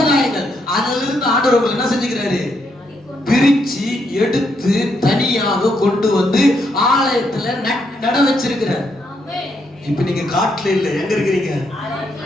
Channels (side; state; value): both; normal; correlation 0.77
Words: அதிலிருந்து ஆண்டவர் என்ன செஞ்சுக்கிறாரு? பிரிச்சு எடுத்து தனியாக கொண்டு வந்து ஆலயத்துல நட வச்சிருக்கிறார். இப்ப நீங்க காட்டுல இல்ல, எங்க இருக்கிறீங்க?